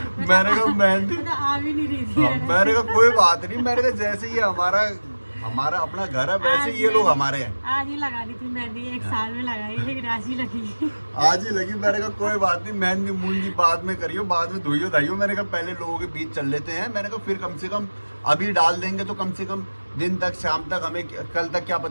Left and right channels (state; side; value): inverted; both; correlation -1.00